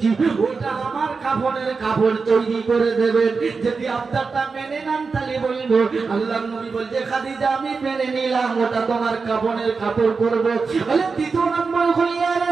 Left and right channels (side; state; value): left; quieter; 4.7 dB